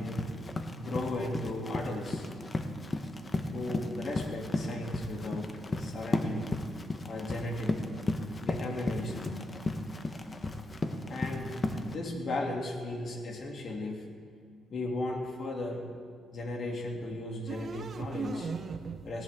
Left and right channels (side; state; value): both; normal; correlation 0.83